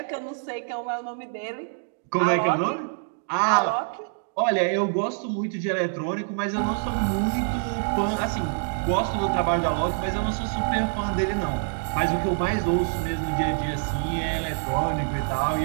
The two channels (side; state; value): left; silent; digital silence